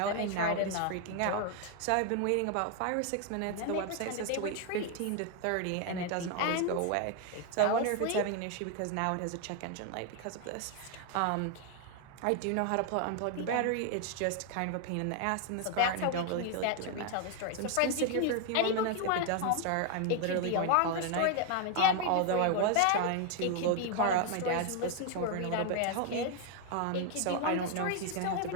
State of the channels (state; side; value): different; both; correlation 0.00